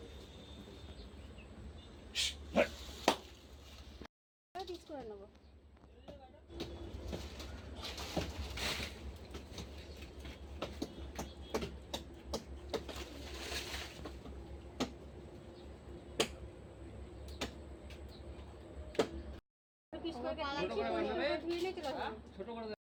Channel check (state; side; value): identical; both; correlation 1.00